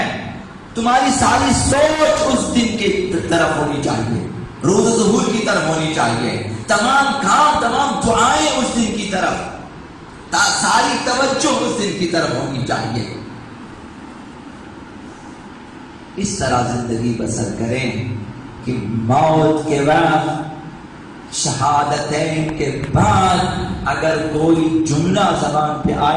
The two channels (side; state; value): both; identical; correlation 1.00